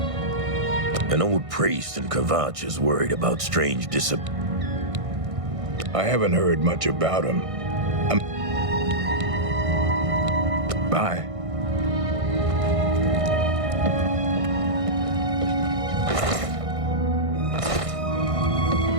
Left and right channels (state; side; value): late; left; 1.6 ms